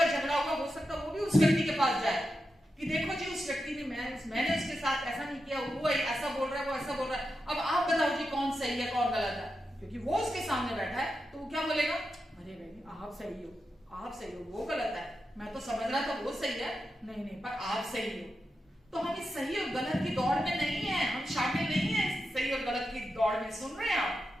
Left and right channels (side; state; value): both; normal; correlation 0.89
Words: झगड़ा होगा हो सकता है वो भी उस व्यक्ति के पास जाए कि देखो जी उस व्यक्ति ने मैंने उसके साथ ऐसा नहीं किया, वो ऐसा बोल रहा है, वो ऐसा बोल रहा है, अब आप बताओ जी कौन सही है कौन गलत है? क्योंकि वो उसके सामने बैठा है तो वो क्या बोलेगा? अरे भाई आप सही हो, आप सही हो, वो गलत है, मैं तो समझ रहा था वो सही है, नहीं नहीं पर आप सही हो। तो हम इस सही और गलत की दौड़ में नहीं है, हम शामिल नहीं है इस सही और गलत की दौड़ में। सुन रहे हैं आप?